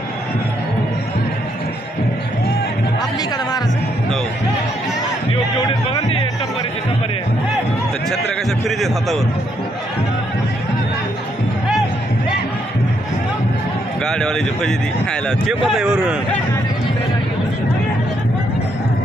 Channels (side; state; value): both; normal; correlation 0.74